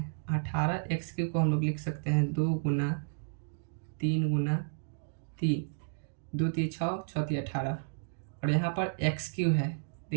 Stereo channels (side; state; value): left; silent; digital silence